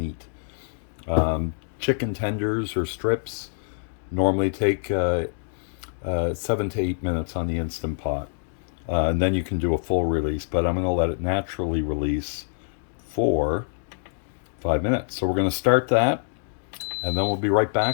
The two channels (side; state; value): right; silent; digital silence